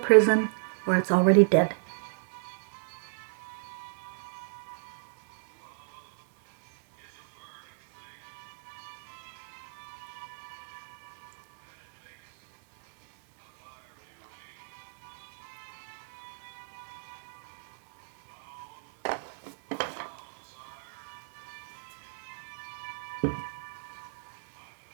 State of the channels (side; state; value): left; silent; 57 dB below the other